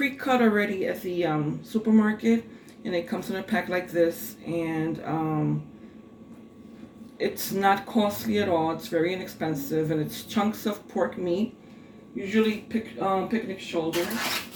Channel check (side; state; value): both; identical; correlation 1.00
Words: already at the supermarket, and it comes in a pack like this. And it's not costly at all. It's very inexpensive, and it's chunks of pork meat, usually picnic shoulder.